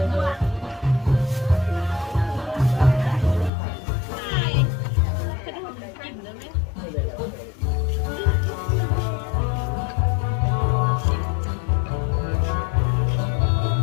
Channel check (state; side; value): drops out; right; at 3.5 s